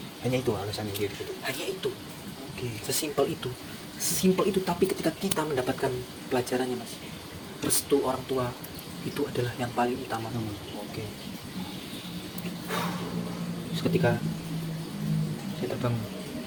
Hanya itu alasannya dia gitu. Hanya itu, Oke. sesimpel itu. Tapi ketika kita mendapatkan pelajarannya mas, restu orang tua itu adalah yang paling utama. Oke. Terus ketika saya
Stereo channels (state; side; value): identical; both; correlation 1.00